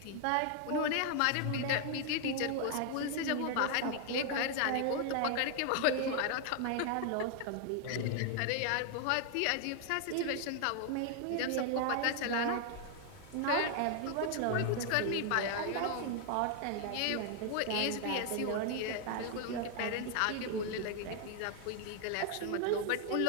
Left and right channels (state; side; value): different; both; correlation 0.00